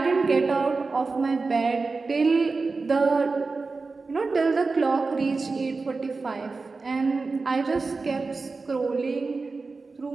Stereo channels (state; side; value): quieter; left; 4.0 dB